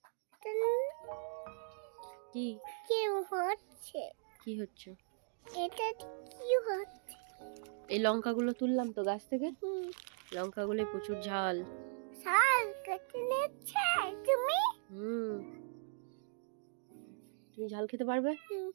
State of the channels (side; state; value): left; silent; digital silence